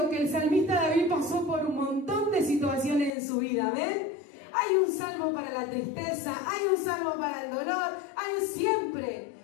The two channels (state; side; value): drops out; right; at 3.1 s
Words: que el salmista David pasó por un montón de situaciones en su vida, ¿ven? Hay un salmo para la tristeza, hay un salmo para el dolor, hay siempre,